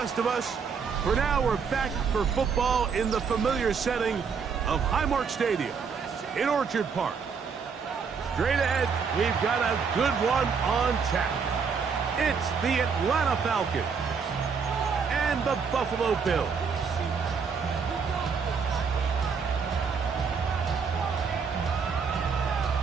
of us, for now we're back for football in the familiar setting of Highmark Stadium in Orchard Park. Straight ahead, we've got a good one on tap. It's the Atlanta Falcons and the Buffalo Bills.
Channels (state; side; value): quieter; left; 5.9 dB